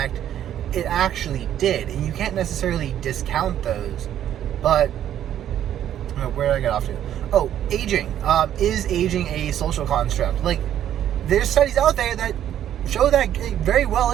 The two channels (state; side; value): quieter; left; 10.9 dB